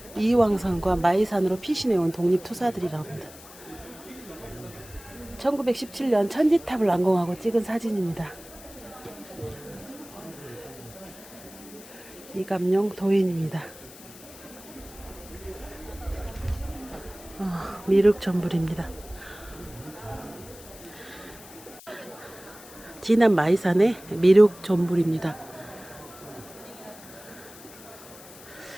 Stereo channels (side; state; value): left; noise; hiss, 19 dB below the sound